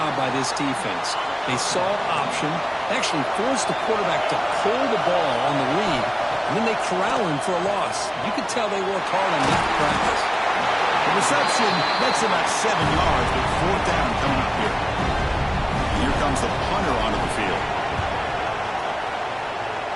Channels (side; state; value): both; identical; correlation 1.00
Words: by this defense. They saw option, actually forced the quarterback to pull the ball on the read, and then they corral him for a loss. You could tell they worked hard on that practice. The reception gets about 7 yards, but 4th down coming up here. And here comes the punter onto the field.